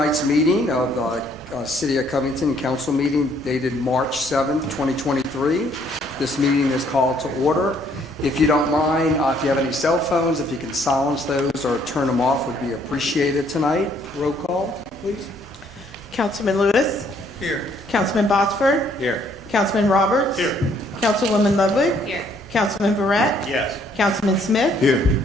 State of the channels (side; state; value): both; normal; correlation 0.65